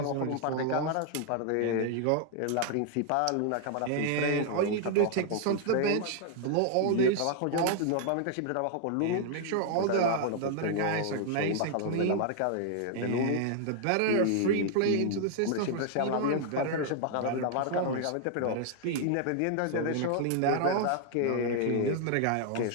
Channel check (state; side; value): different; both; correlation 0.00